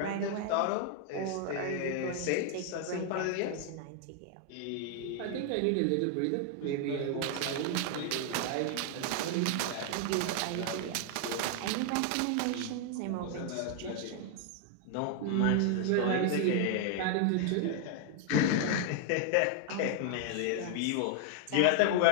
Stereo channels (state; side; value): different; both; correlation 0.00